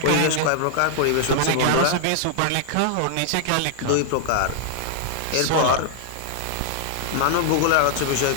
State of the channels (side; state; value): both; different; correlation -0.01